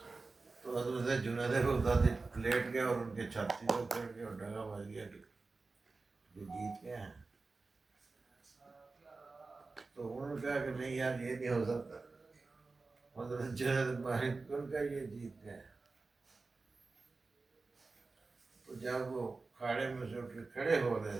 تو حضرت جنید بغدادی لیٹ گئے اور ان کے چھاتی کو پھڑ کے اور ڈگا بج گیا کہ یہ جیت گئے ہیں. تو انہوں نے کہا کہ نہیں یار یہ نہیں ہو سکتا. حضرت جنید مالک ان کا یہ جیت گئے. تو جب وہ کھاڑے میں سے اٹھ کے کھڑے ہو رہے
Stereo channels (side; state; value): left; quieter; 3.8 dB